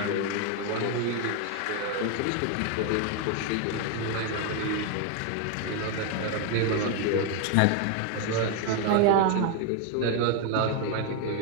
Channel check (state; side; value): different; both; correlation 0.01